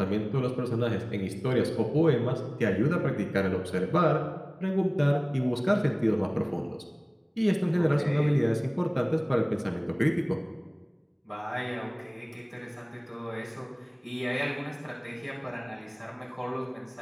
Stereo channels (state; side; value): identical; both; correlation 1.00